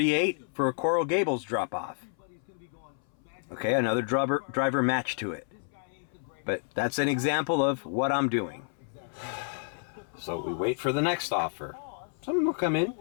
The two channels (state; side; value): silent; right; 58 dB below the other